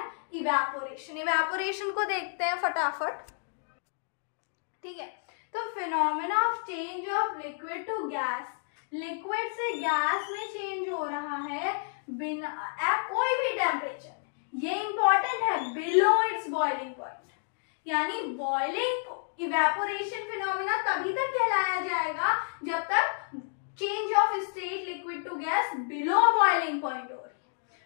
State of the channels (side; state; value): right; silent; digital silence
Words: इवेपोरेशन को देखते हैं फटाफट। ठीक है, तो phenomena of change of liquid to gas liquid से गैस में चेंज हो रहा है बिना कोई भी टेम्परेचर में, ये इंपॉर्टेंट है, बिलो इट्स बॉइलिंग पॉइंट। यानी बॉइलिंग इवेपोरेशन फिनोमिना तभी तक कहलाया जाएगा जब तक change of state liquid to gas below boiling point हो रही है।